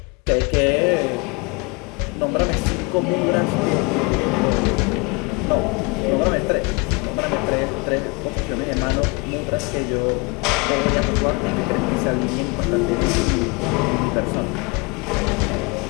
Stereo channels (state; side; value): quieter; right; 28.9 dB